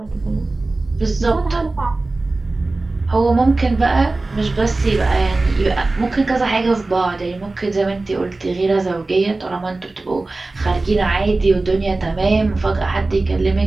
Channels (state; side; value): quieter; left; 3.2 dB